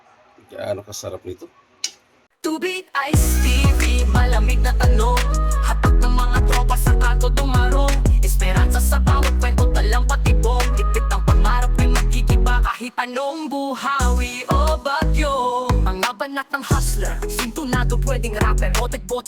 Gaano kasarap nito. Tubig, Ice TV, malamig na tanong. Hatak ng mga tropa sa kanto dumarong. Esperanza sa bawat kwento, talang patibong. Tipit ng pangarap ay magkikiba kahit anong buhawi o bagyo. Mga banat ng hustler, sintunado pwedeng rapper.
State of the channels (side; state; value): both; identical; correlation 1.00